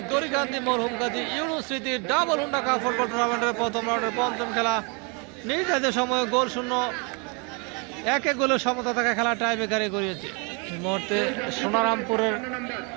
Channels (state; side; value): quieter; left; 33.4 dB